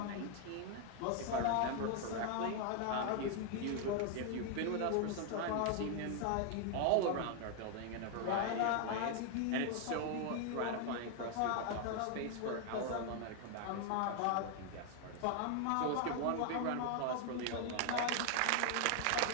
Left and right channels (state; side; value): different; both; correlation 0.00